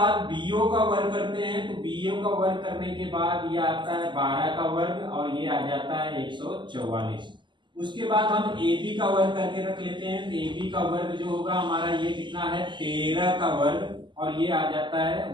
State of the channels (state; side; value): late; left; 0.22 ms